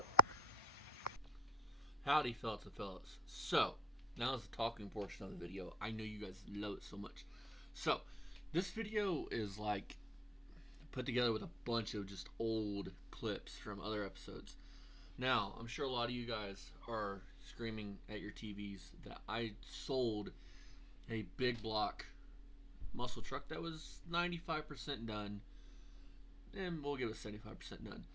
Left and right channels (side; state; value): both; normal; correlation 0.80